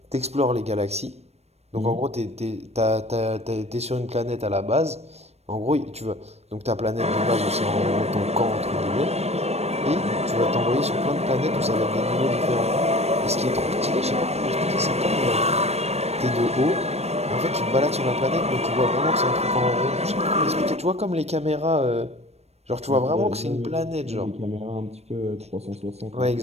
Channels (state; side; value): late; left; 0.31 ms